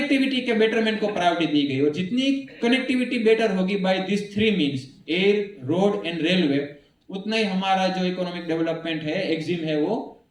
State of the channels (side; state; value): both; identical; correlation 1.00